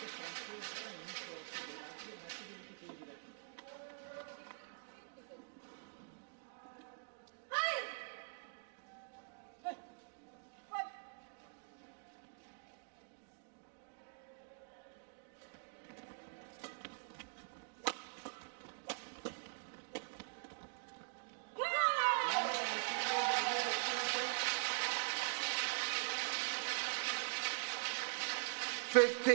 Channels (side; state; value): left; silent; digital silence